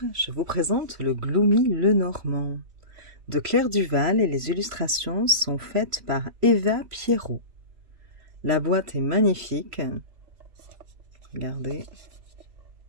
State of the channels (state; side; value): late; left; 3.4 ms